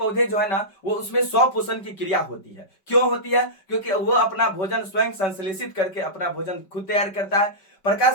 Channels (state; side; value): late; right; 5.2 ms